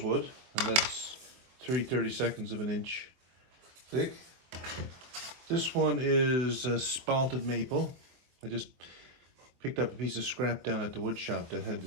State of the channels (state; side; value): late; left; 23 ms